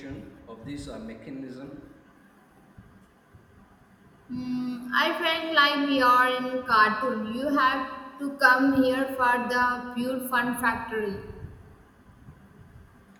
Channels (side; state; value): both; identical; correlation 1.00